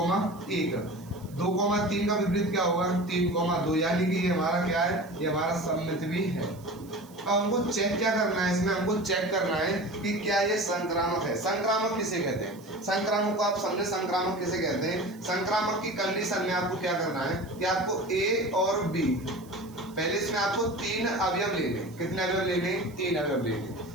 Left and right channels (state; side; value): noise; right; hiss, 25 dB below the sound